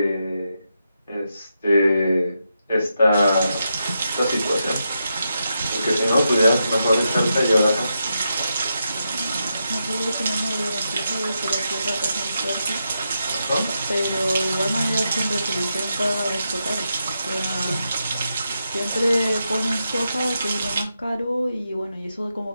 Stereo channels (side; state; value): both; inverted; correlation -0.85